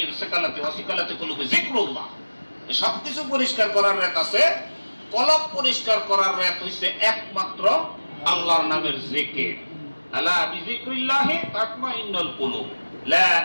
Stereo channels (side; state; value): both; inverted; correlation -1.00